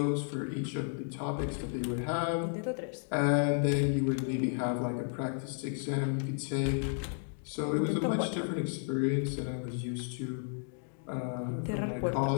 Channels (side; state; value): right; silent; 56 dB below the other